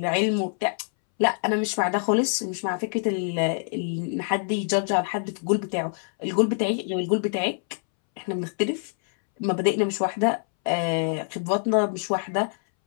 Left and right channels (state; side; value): silent; right; 61 dB below the other